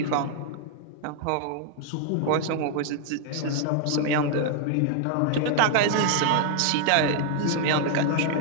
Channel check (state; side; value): different; both; correlation 0.00